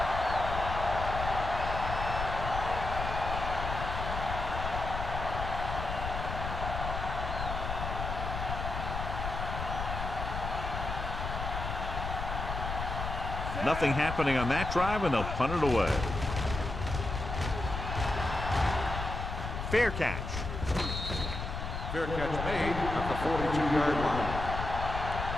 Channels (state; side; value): noise; left; rumble, 5 dB below the sound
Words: Nothing happening on that drive, and they'll punt it away. Fair catch. Fair catch made at the 42-yard line.